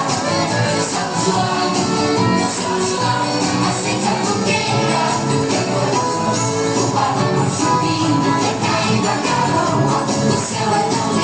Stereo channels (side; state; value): left; noise; hum, 26 dB below the sound